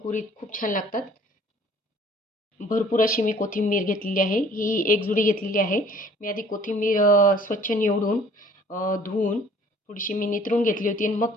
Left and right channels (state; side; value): normal; both; correlation 0.54